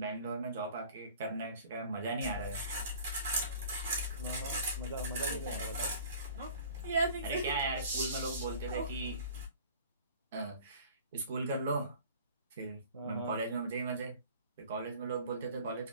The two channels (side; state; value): both; inverted; correlation -0.46